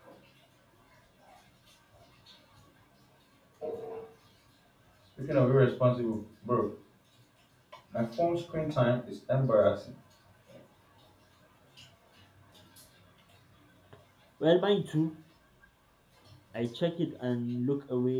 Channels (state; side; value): identical; both; correlation 1.00